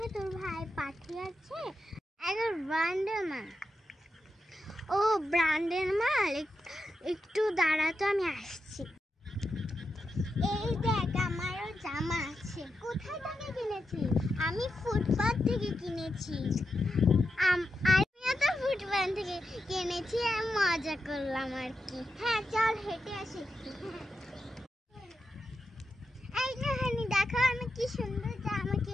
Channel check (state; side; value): normal; both; correlation 0.87